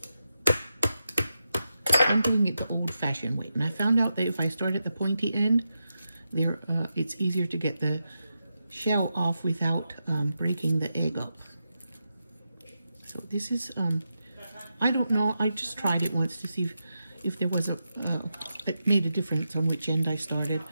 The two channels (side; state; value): both; inverted; correlation -0.88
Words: I'm doing it the old-fashioned way. And I found out that if I start at the pointy end, it's easier to get the shell off without breaking the egg up. So this is, I don't know. I just tried it once to see if there was it made a difference on which end I started.